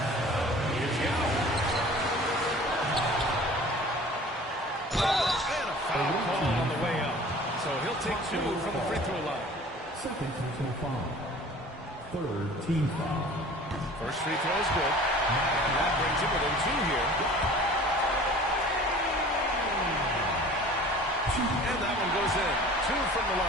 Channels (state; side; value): normal; both; correlation 0.45